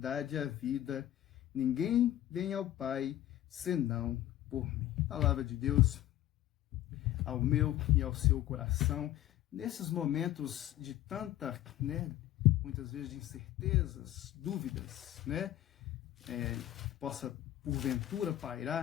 e a vida. Ninguém vem ao Pai senão por mim. Palavra de Deus ao meu e ao seu coração. Nesses momentos de tanta, muitas vezes de incertezas, dúvidas, possa porventura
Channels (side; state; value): right; quieter; 13.4 dB